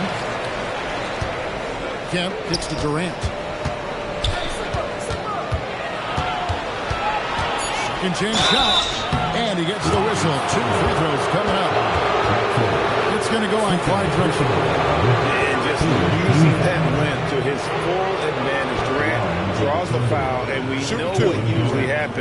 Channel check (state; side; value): identical; both; correlation 1.00